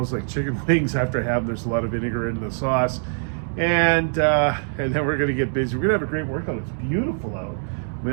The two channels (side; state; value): left; silent; digital silence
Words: like chicken wings after I have them. There's a lot of vinegar in the sauce, and then we're gonna get busy. We're gonna have a great workout. It's beautiful out. I